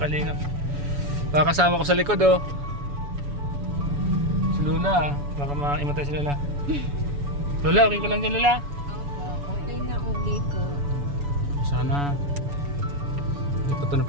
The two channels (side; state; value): left; late; 7.0 ms